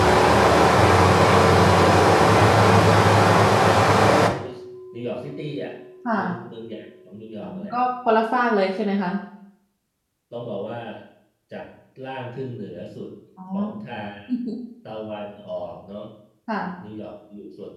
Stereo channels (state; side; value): identical; both; correlation 1.00